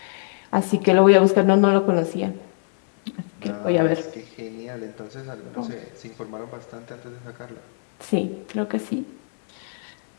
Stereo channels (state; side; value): silent; right; digital silence